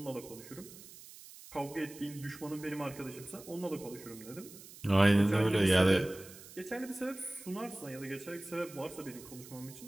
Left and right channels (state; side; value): noise; right; hiss, 17 dB below the sound